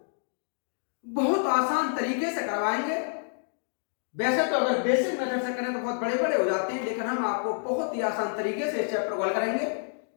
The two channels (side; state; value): right; silent; digital silence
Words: बहुत आसान तरीके से करवाएंगे। वैसे तो अगर बेसिक मेथड से करें तो बहुत बड़े बड़े हो जाते हैं, लेकिन हम आपको बहुत ही आसान तरीके से इस चैप्टर को हल करेंगे।